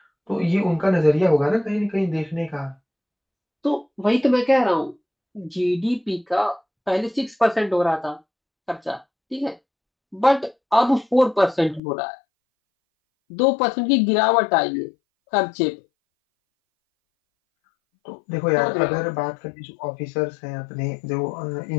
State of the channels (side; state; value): right; drops out; at 11.8 s